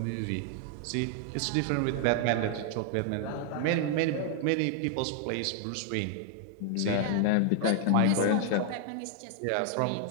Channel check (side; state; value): both; different; correlation 0.00